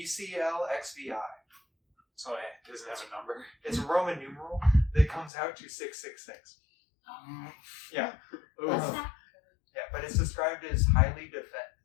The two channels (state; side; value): drops out; right; at 5.3 s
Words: So it doesn't have a number. It's a Roman numeral that comes out to 666. Yeah. What's that? Yeah, but it's described as highly